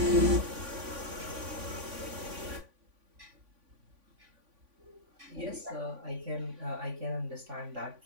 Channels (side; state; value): left; late; 3.5 ms